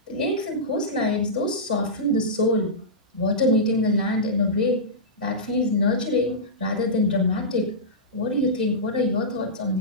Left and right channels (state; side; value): normal; both; correlation -0.16